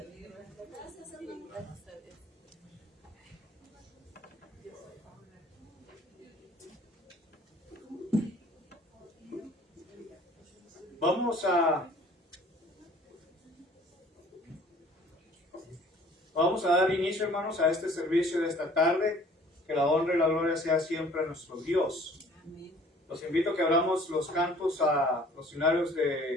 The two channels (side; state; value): both; normal; correlation 0.52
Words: Vamos a dar inicio, hermanos, a este servicio de esta tarde. Que la honra y la gloria sea siempre a nuestro Dios. Los invito a que abramos los cantos a los finales de